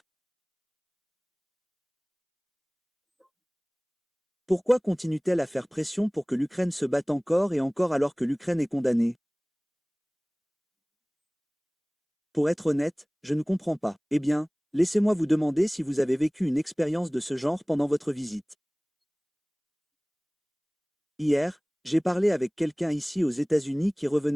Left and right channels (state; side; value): identical; both; correlation 1.00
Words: Pourquoi continuent-elles à faire pression pour que l'Ukraine se batte encore et encore alors que l'Ukraine est condamnée? Pour être honnête, je ne comprends pas. Eh bien, laissez-moi vous demander si vous avez vécu une expérience de ce genre pendant votre visite. Hier, j'ai parlé avec quelqu'un ici aux États-Unis qui